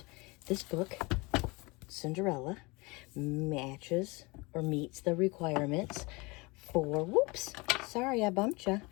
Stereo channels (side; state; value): right; quieter; 25.6 dB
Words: This book, Cinderella, matches or meets the requirements for, whoops, sorry I bumped you.